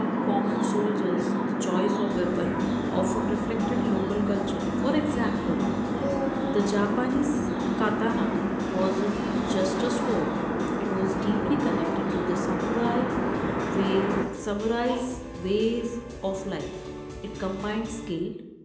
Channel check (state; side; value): identical; both; correlation 1.00